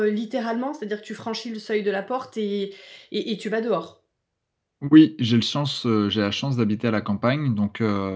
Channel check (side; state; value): both; identical; correlation 1.00